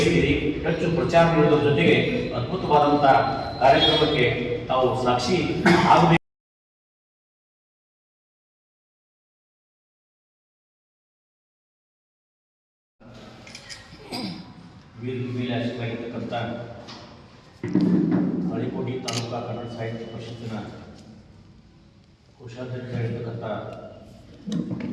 ಹೆಚ್ಚು ಪ್ರಚಾರ ನೀಡುವುದರ ಜೊತೆಗೆ ಅದ್ಭುತವಾದಂಥ ಕಾರ್ಯಕ್ರಮಕ್ಕೆ ತಾವು ಸಾಕ್ಷಿ ಆಗಬೇಕು. ವೇದಿಕೆ ಮೇಲೆ ಆಶೀರ್ವಾಗಿರ್ತಕ್ಕಂಥ ತಾಳಿಕೋಟೆ ತಾಲೂಕಾ ಕನ್ನಡ ಸಾಹಿತ್ಯ ಪರಿಷತ್ತಿನ ಕೋಶಾಧ್ಯಕ್ಷರಾಗಿರ್ತಕ್ಕಂಥ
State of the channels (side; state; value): both; identical; correlation 1.00